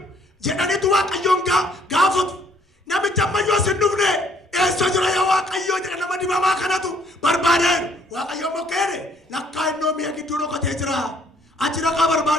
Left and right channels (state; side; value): normal; both; correlation 0.63